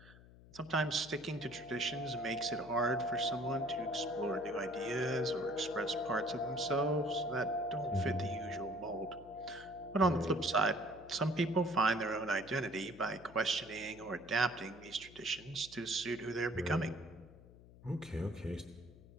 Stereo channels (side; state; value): left; noise; hum, 21 dB below the sound